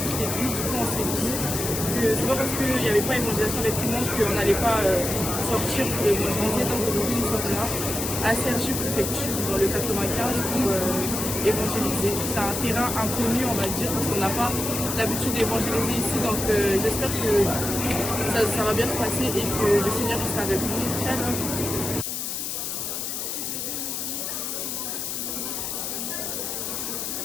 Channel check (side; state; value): left; noise; hiss, 3 dB below the sound